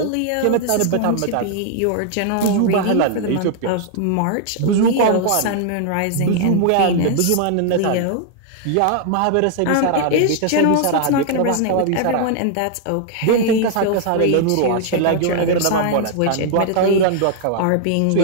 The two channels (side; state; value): both; different; correlation 0.00